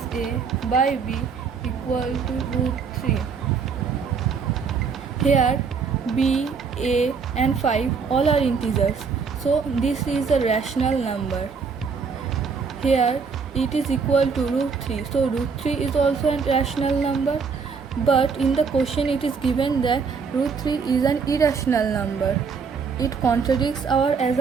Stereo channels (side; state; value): left; quieter; 5.5 dB